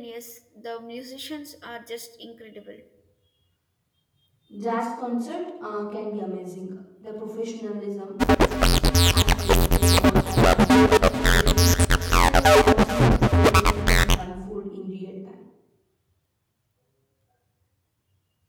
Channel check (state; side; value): identical; both; correlation 1.00